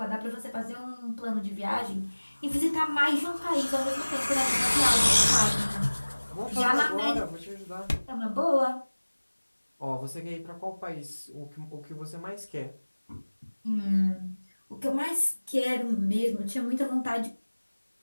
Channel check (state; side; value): inverted; both; correlation -1.00